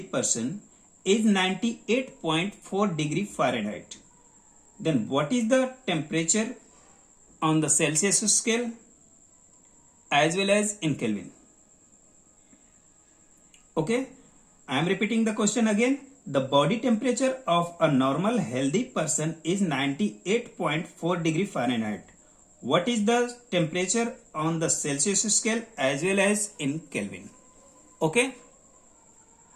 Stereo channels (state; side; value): identical; both; correlation 1.00